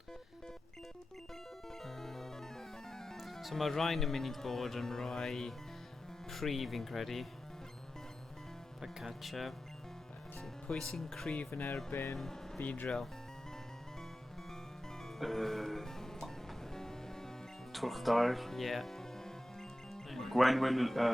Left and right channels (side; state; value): both; normal; correlation 0.93